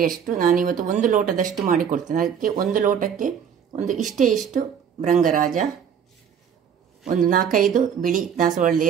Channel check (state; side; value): quieter; left; 7.9 dB